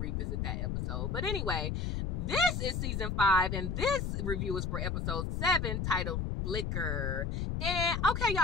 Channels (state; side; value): noise; left; rumble, 1 dB below the sound